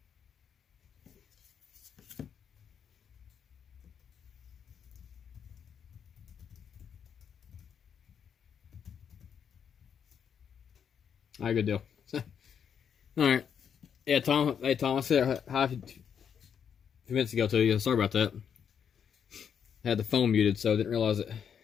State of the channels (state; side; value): quieter; right; 7.7 dB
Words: All right, good deal. All right. Yeah, Tom. Hey, Tom. I said hi a few minutes ago to you. Sorry about that. I had the phone muted, so I didn't realize it.